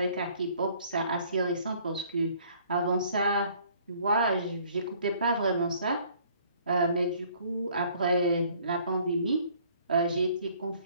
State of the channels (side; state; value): both; inverted; correlation -0.59